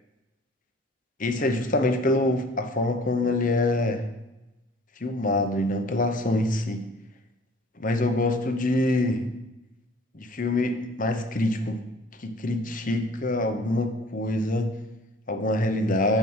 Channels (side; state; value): both; normal; correlation 0.50